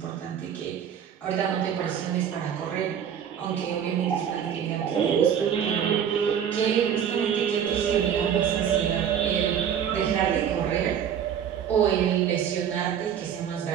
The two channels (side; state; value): left; quieter; 8.6 dB